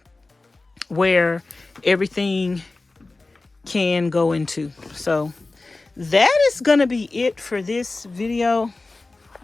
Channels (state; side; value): quieter; right; 3.3 dB